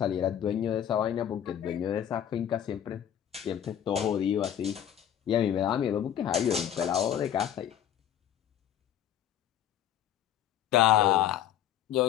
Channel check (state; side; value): quieter; right; 10.3 dB